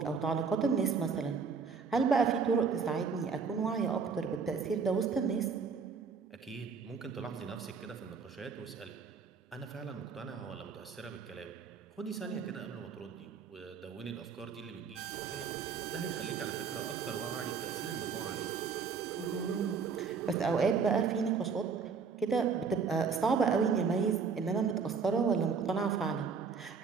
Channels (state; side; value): quieter; left; 5.5 dB